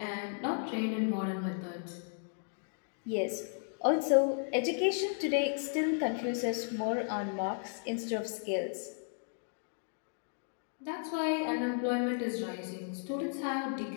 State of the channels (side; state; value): right; silent; 55 dB below the other